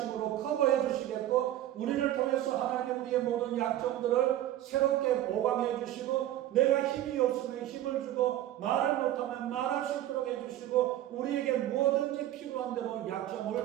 커버해 주시겠고 우리를 통해서 하나님이 우리의 모든 약점들을 새롭게 보강해 주시고 내가 힘이 없으면 힘을 주고 말을 못하면 말할 수 있도록 해주시고 우리에게 뭐든지 필요한 대로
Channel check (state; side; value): quieter; left; 13.3 dB